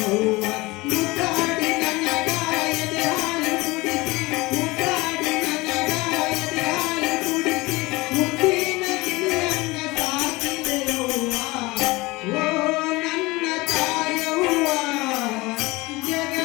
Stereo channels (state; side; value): quieter; right; 22.3 dB